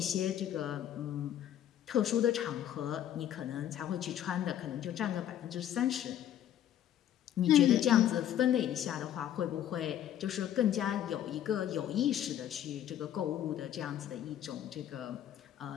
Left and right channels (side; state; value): right; quieter; 11.0 dB